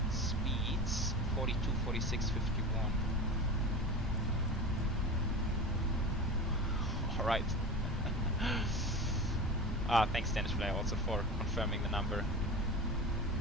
Speeds 42, 46, 51. Alright. Thanks Dennis Fly also for confirming the number.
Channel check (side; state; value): both; normal; correlation 0.30